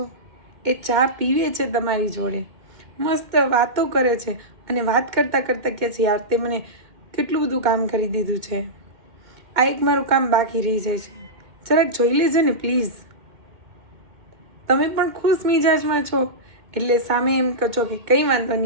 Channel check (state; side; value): late; left; 2.1 ms